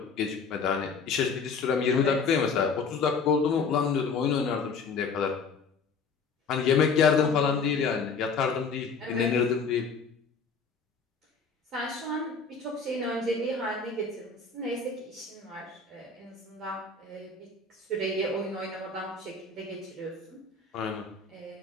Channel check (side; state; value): right; quieter; 4.9 dB